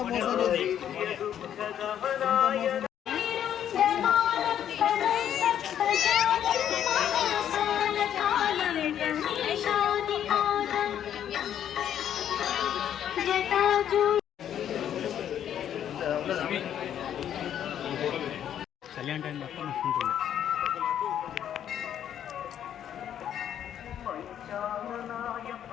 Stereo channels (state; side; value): quieter; right; 10.0 dB